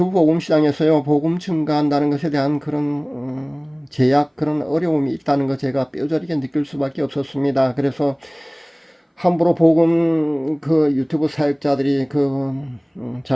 복음 시장에서요 복음 증가한다는 것에 대한 그런 제약 그런 어려움이 있다는 거 제가 뼈저리게 느낄 수밖에 없었습니다. 그래서 함부로 복음 그 유튜브 사역자들이 그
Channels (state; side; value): identical; both; correlation 1.00